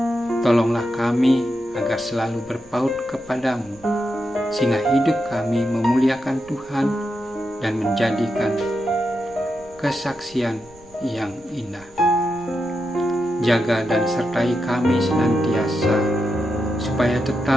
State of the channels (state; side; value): noise; right; rumble, 25 dB below the sound